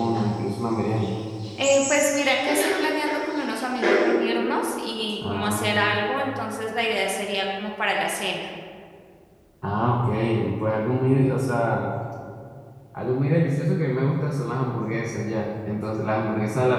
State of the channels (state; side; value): identical; both; correlation 1.00